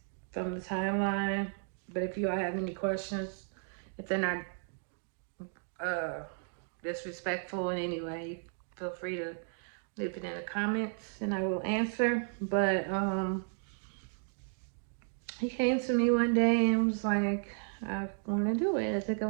from the timeline. But if you all have any questions, if they're not uh, disrespectful in any way, feel free to leave it in the comments and I will answer. But he came to me one day and was like, I want to do it. I think I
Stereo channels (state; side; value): silent; left; 55 dB below the other